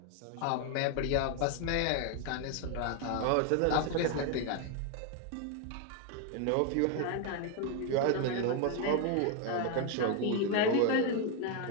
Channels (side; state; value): both; different; correlation 0.01